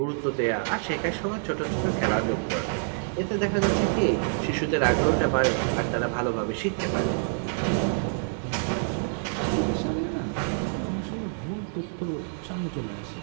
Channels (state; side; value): silent; left; digital silence